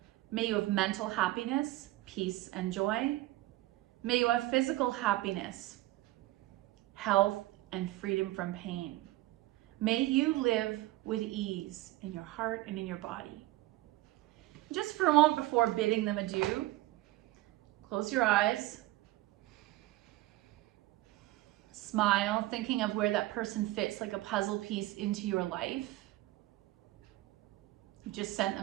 May you have mental happiness, peace, and joy. May you have physical happiness, health, and freedom from pain. May you live with ease in your heart and in your body. Just for a moment before bidding them adieu, close your eyes. Smile, thinking of where that person fits like a puzzle piece into your life. You just sent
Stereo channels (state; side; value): quieter; left; 17.2 dB